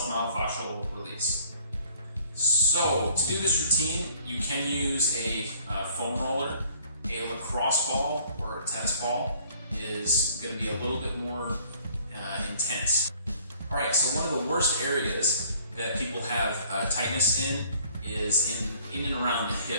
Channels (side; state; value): both; inverted; correlation -0.58